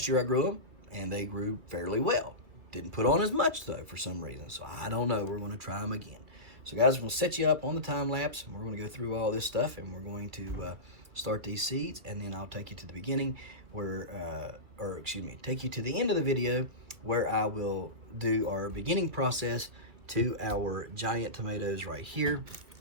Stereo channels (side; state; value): left; late; 2.8 ms